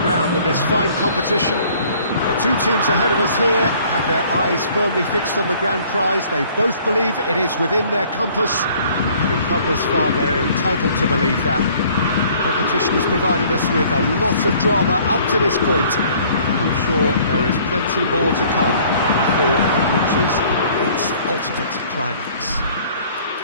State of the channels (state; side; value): inverted; both; correlation -0.56